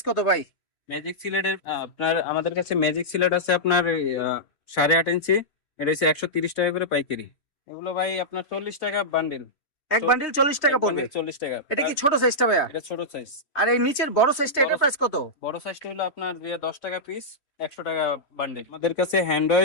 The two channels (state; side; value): late; right; 2.9 ms